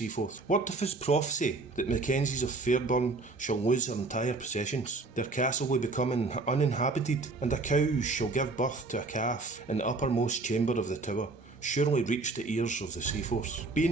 Word of his prophecy that Mackenzies of Fairburn shall lose their entire possessions, their castle will become uninhabited, and a cow shall give birth to a calf in the uppermost chamber of the tower, surely reached the ears of the Seaforths.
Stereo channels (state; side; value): quieter; left; 3.5 dB